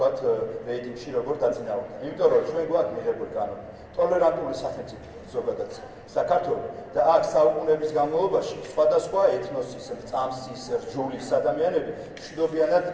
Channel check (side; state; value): both; identical; correlation 1.00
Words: რეიტინგში როგორ დაწინაურდა. იმიტომ რომ ჩვენ გვაქვს მიღებული კანონი. ტოლერანტული სახელმწიფო ზოგადად საქართველოს და აქ საუკუნეების განმავლობაში სხვადასხვა ეთნოსის, წამსის, რჯულის ადამიანები მშვიდობიანად